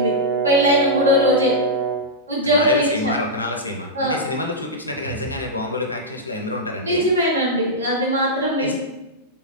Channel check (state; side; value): normal; both; correlation -0.10